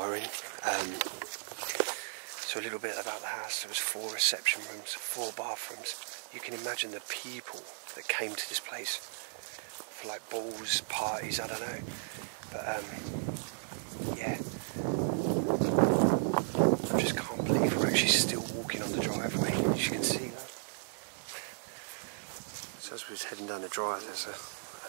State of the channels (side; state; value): left; silent; digital silence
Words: So a little bit about the house. There was 4 reception rooms, 4 bathrooms. You can imagine the people that came to this place for like balls, parties, I don't know. But yeah. I just can't believe we're actually still walking on the driveway. As you can see that. So as we're heading down the drive, there's